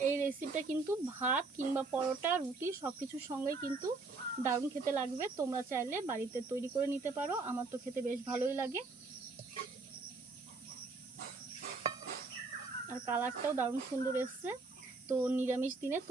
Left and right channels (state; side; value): quieter; left; 3.8 dB